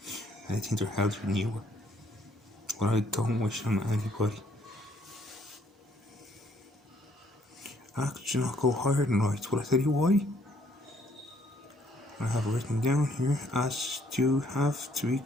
And I think they're healthier than you are. But I don't wish on anybody. Actually, not go higher than right. But I tell you why. I have written down here, as you have to be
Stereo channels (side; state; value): both; normal; correlation 0.66